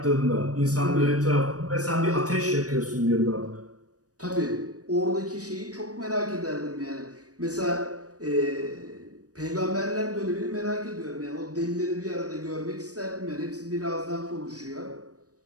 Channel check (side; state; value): left; late; 0.67 ms